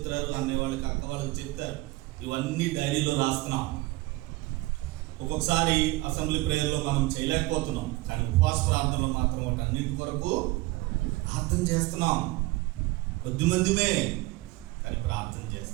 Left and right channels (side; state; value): left; quieter; 20.8 dB